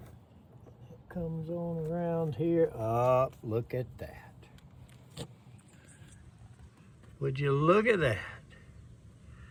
Comes on around here. Oh, look at that. Would you look at that?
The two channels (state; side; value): identical; both; correlation 1.00